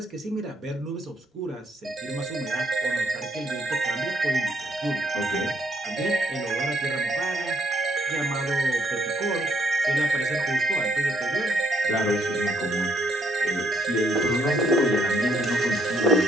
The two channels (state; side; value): normal; both; correlation 0.70